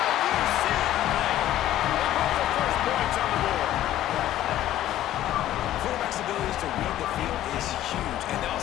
UCLA! They put the first points on the board. Quarterback's abilities to read the field is huge, and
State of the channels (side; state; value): right; quieter; 12.9 dB